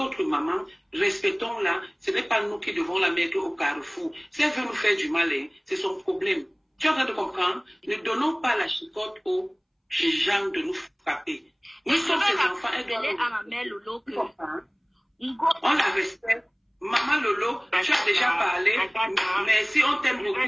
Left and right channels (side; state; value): both; identical; correlation 1.00